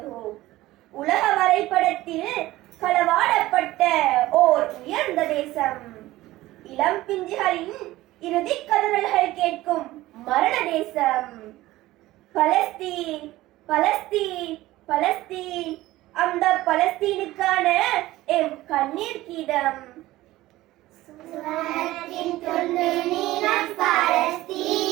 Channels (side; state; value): left; quieter; 17.0 dB